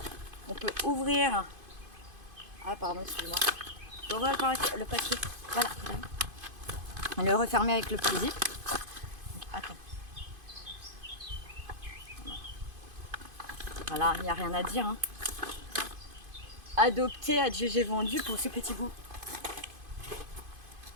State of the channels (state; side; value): late; left; 2.5 ms